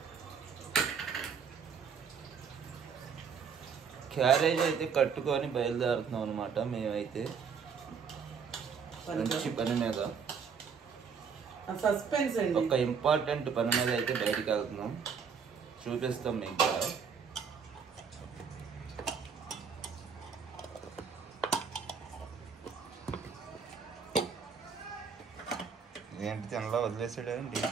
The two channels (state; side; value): quieter; left; 6.3 dB